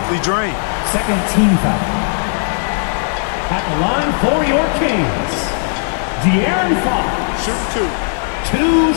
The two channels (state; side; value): silent; right; 64 dB below the other